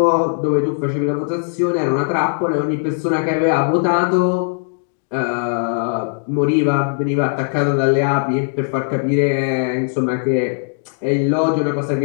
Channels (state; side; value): silent; right; digital silence